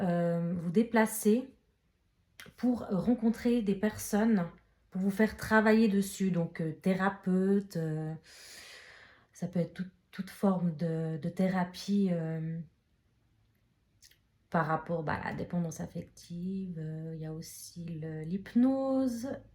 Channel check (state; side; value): identical; both; correlation 1.00